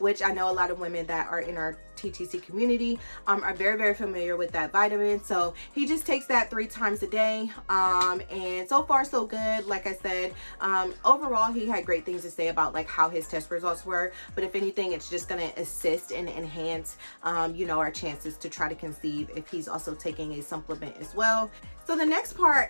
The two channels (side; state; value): both; inverted; correlation -1.00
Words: I know a lot of women that are in our TTC community are very, very familiar with that vitamin. So he just takes that 3 times a day. And so far so good. Like I said, overall, he had great things to say about like how his test results were. But if anything, it's just going to assist and enhance, you know, our chances to try to conceive if he's also taking a supplement as well. So the next